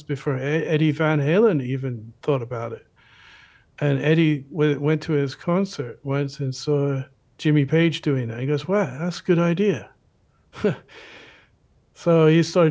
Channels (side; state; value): both; identical; correlation 1.00